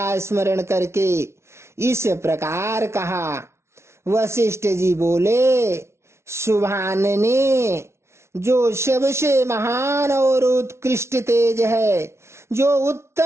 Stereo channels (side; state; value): left; late; 0.13 ms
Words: स्मरण करके इस प्रकार कहा। वशिष्ठ जी बोले, शुभानने, जो सबसे महान और उत्कृष्ट तेज है, जो